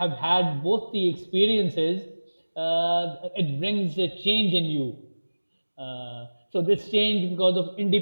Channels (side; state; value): both; inverted; correlation -1.00